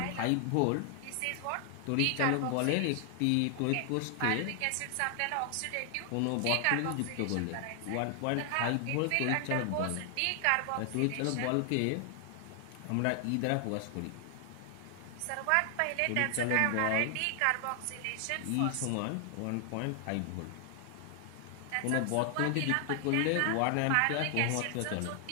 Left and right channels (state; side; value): different; both; correlation 0.00